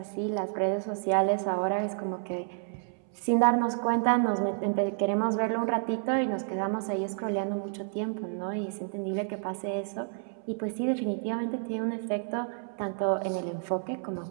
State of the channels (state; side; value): silent; left; 58 dB below the other